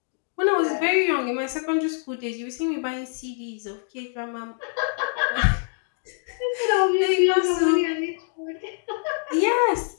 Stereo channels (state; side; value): silent; right; digital silence